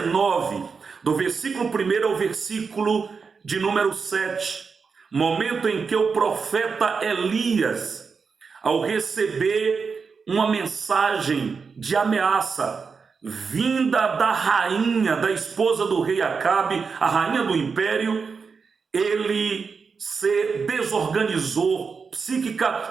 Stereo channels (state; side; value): quieter; left; 5.3 dB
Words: do versículo 1 ao versículo de número 7, momento em que o profeta Elias, ao receber uma mensagem de ameaça vinda da rainha, da esposa do rei Acabe, a rainha do império, ele se desorganizou psíquica